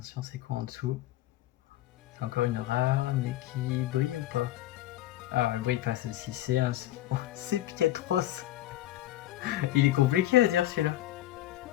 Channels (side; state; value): right; quieter; 14.4 dB